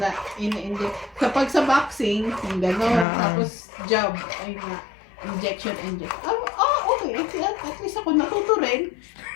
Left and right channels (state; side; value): drops out; right; at 3.1 s